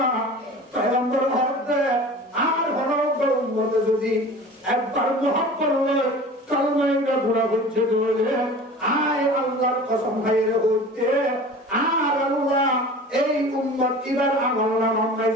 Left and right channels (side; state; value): both; normal; correlation 0.39